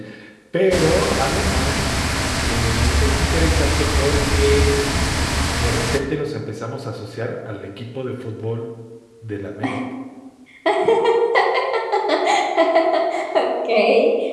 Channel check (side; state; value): both; identical; correlation 1.00